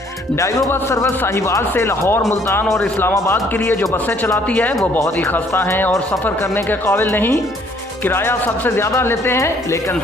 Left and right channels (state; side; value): normal; both; correlation 0.62